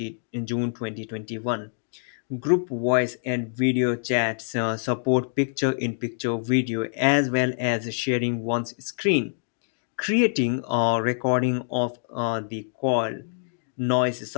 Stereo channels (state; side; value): silent; right; digital silence